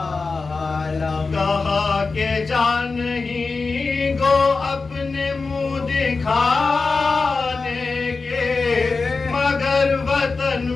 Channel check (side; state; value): right; quieter; 4.2 dB